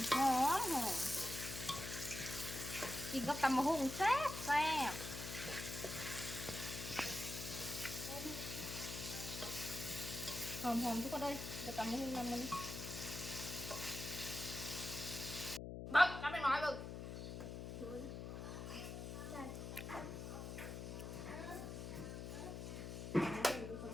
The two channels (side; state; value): left; noise; hum, 7 dB below the sound